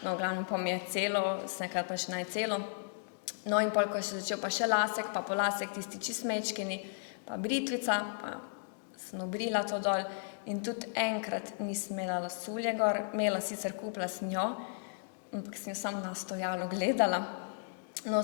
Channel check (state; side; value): silent; right; digital silence